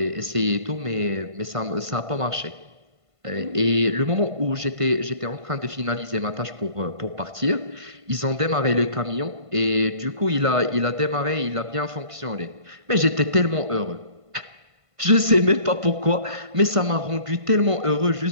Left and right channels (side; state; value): left; late; 1.5 ms